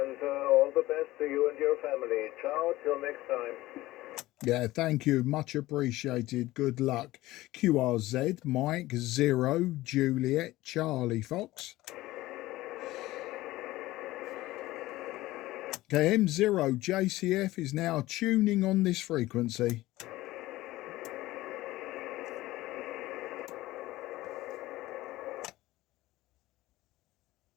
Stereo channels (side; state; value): right; quieter; 17.5 dB